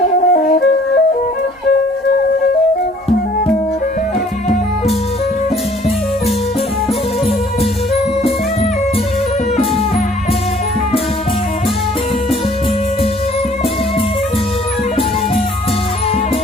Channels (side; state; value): both; normal; correlation 0.57